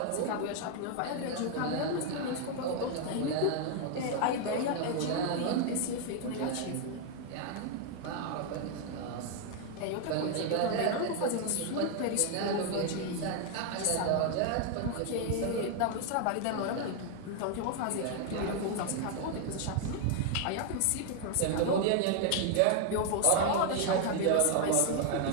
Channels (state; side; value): different; both; correlation 0.00